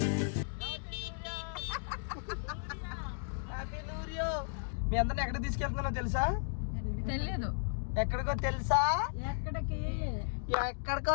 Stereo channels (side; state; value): right; silent; digital silence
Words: మీ అందరిని ఎక్కడ తీసుకెళ్తున్నానో తెలుసా? తెలియదు. ఎక్కడికో తెలుసా? ఎక్కడికో